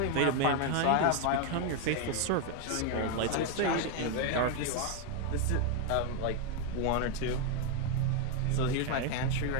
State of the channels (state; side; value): different; both; correlation 0.01